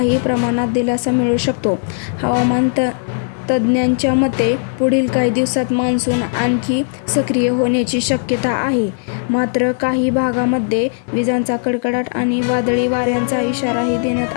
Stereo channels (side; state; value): right; silent; digital silence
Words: प्रमाणात दिलासा मिळू शकतो. हवामान तज्ज्ञांच्या मते पुढील काही दिवसात मान्सून आणखी सक्रिय होण्याची शक्यता आहे. मात्र काही भागांमध्ये विजांचा कडकडाट आणि वादळी वाऱ्यांचा इशाराही देण्यात